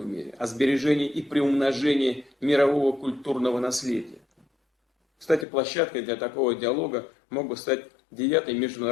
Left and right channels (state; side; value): drops out; right; at 5.5 s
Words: мире, о сбережении и приумножении мирового культурного наследия. Кстати, площадкой для такого диалога мог бы стать 9-й